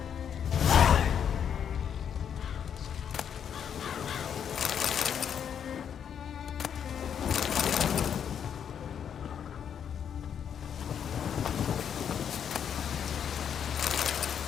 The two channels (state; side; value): quieter; right; 8.2 dB